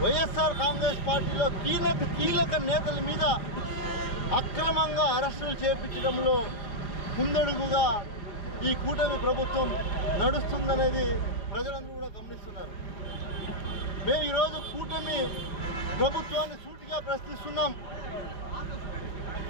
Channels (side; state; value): right; late; 4.8 ms